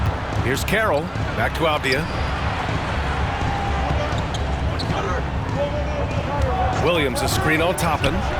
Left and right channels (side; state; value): both; identical; correlation 1.00